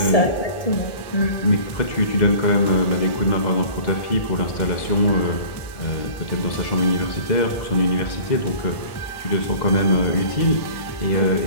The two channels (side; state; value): right; late; 1.1 ms